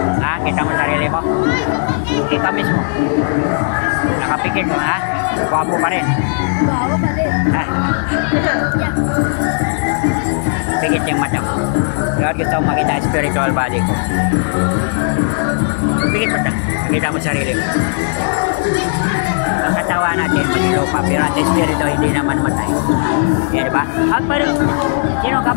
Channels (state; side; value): silent; right; digital silence